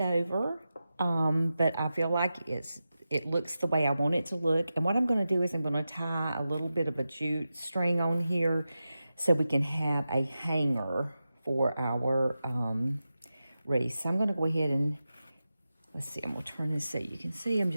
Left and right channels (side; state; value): both; inverted; correlation -0.92